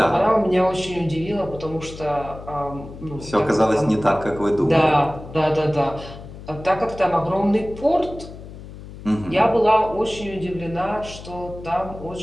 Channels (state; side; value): noise; left; hum, 14 dB below the sound